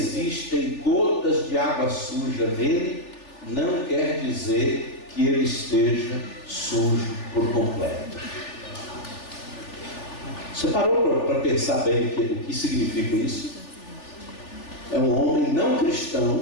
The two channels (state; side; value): late; right; 3.4 ms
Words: gotas de água suja nele, não quer dizer que ele esteja sujo por completo. Você parou para pensar bem o que significa isso? É um homem não